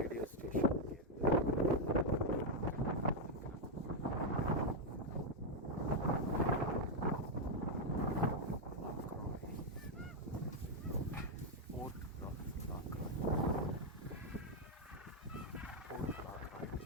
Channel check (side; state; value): both; normal; correlation 0.01